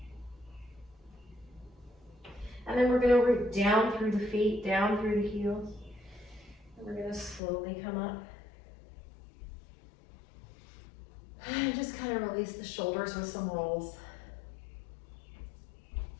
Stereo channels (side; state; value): right; drops out; at 7.4 s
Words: And then we're going to root down through the feet, down through the heels. And we're going to slowly come up. And just kind of release the shoulders with some rolls.